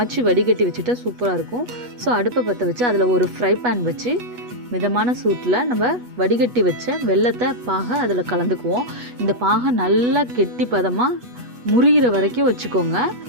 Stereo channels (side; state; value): left; late; 8.2 ms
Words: வடிகட்டி வச்சுட்டா சூப்பராக இருக்கும். ஸோ அடுப்பை பற்ற வச்சு அதில் ஒரு ஃப்ரை பேன் வச்சு மிதமான சூட்டில் நம்ம வடிகட்டி வச்ச வெல்லத்தை பாகை அதில் கலந்துக்குவோம். இந்த பாகை நல்லா கெட்டி பதமாக முறிகிற வரைக்கும் வச்சுக்கோங்க.